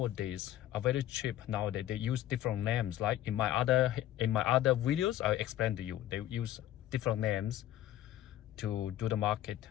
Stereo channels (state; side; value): quieter; right; 13.1 dB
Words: are very cheap nowadays. They use different names. Like in my other videos, I explained to you, they use different names to do the market